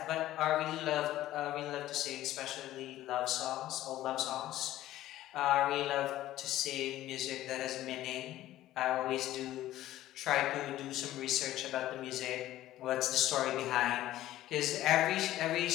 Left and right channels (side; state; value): right; quieter; 14.4 dB